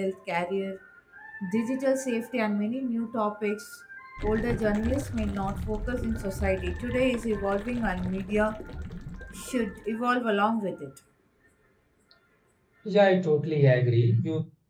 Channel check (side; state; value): both; identical; correlation 1.00